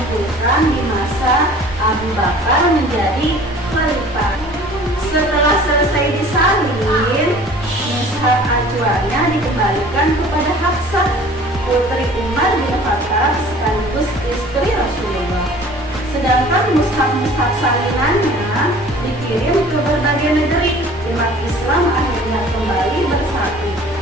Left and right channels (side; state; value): both; normal; correlation 0.47